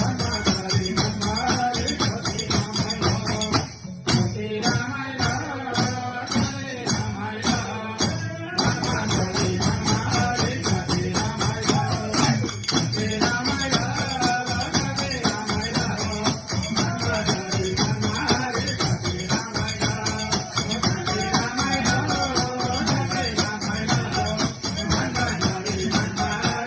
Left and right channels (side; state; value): both; identical; correlation 1.00